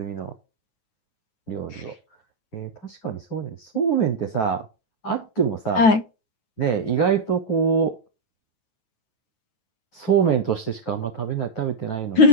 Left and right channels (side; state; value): right; late; 9.2 ms